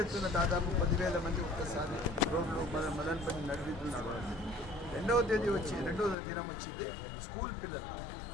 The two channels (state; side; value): drops out; right; at 6.2 s